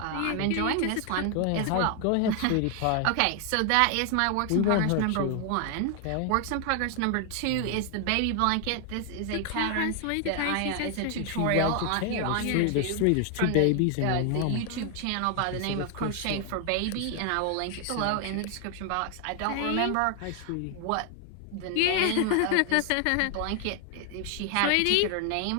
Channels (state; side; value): different; both; correlation 0.00